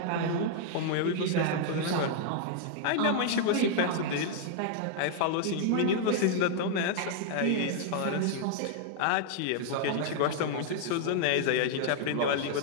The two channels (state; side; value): different; both; correlation -0.01